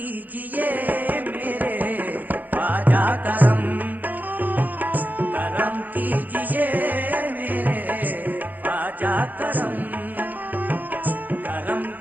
मेरे ख्वाजा करम करम कीजिए मेरे ख्वाजा करम करम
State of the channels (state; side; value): late; left; 0.083 ms